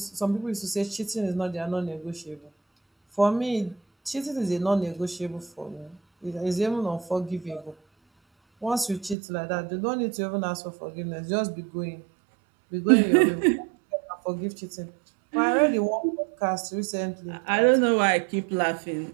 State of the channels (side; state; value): left; drops out; at 9.2 s